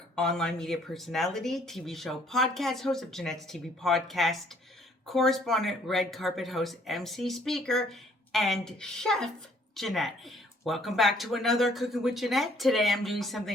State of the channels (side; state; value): both; normal; correlation 0.62